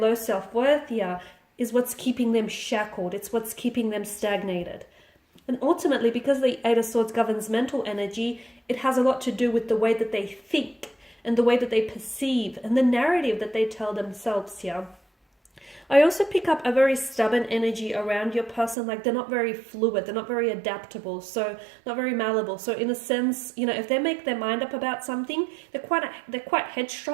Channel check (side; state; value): left; drops out; at 18.8 s